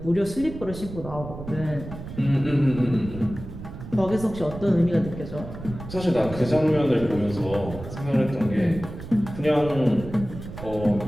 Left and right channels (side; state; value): right; noise; rumble, 11 dB below the sound